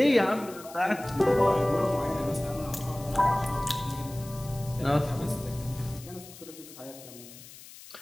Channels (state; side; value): noise; left; hiss, 18 dB below the sound